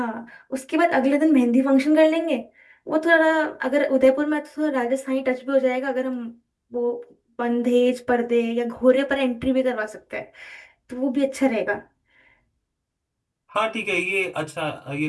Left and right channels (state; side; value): identical; both; correlation 1.00